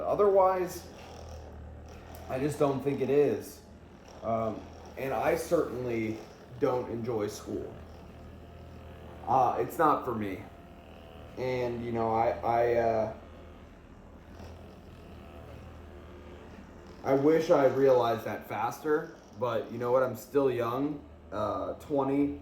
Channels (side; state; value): both; identical; correlation 1.00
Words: I just don't think it is. And I certainly don't enjoy school. It's not for me. And, I wish I realized that faster. But you know what? I'm still young. 20.